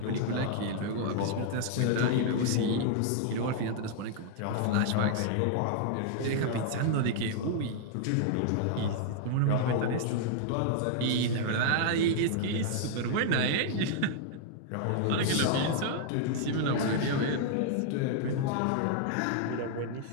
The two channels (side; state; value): both; different; correlation -0.01